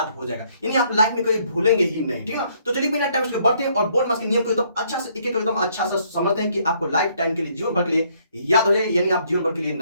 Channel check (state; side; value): inverted; both; correlation -0.67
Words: हो जाएगा, यानी आप लाइफ में कभी भूलेंगे ही नहीं। ठीक है, तो चलिए बिना टाइम बढ़ते हैं और बोर्ड मास के नियम को एकदम अच्छा से एक एक एकदम अच्छा से समझते हैं कि आपको लाइफ टाइम के लिए, जीवन भर के लिए याद हो जाए, यानी आप जीवन भर के लिए